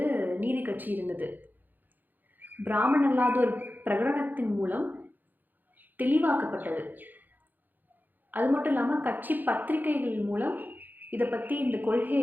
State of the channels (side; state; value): left; late; 0.086 ms